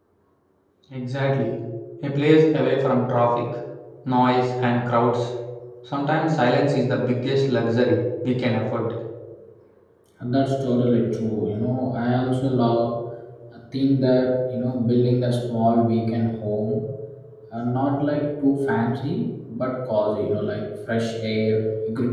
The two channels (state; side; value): identical; both; correlation 1.00